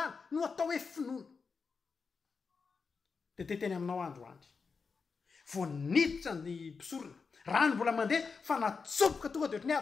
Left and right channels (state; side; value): quieter; right; 5.1 dB